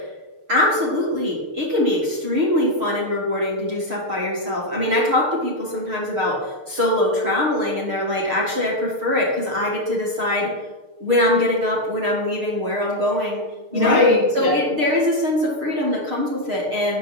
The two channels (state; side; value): late; left; 6.6 ms